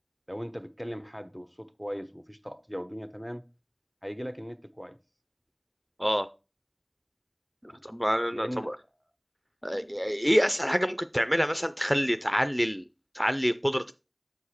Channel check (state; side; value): identical; both; correlation 1.00